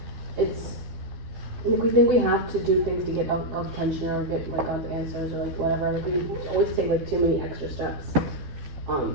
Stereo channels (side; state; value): left; late; 12 ms